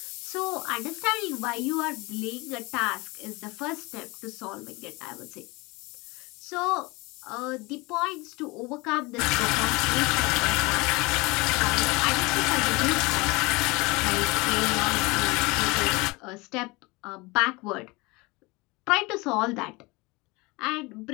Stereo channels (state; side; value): quieter; right; 24.7 dB